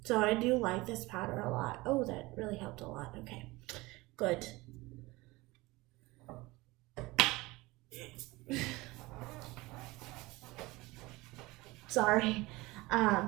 So I do like this powder a lot. Oh, that really helped a lot. Okay, good. Sorry.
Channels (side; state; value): left; quieter; 21.6 dB